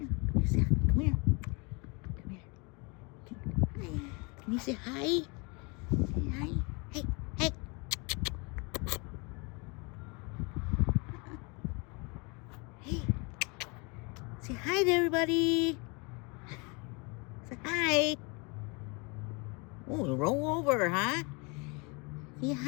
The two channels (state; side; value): quieter; right; 30.2 dB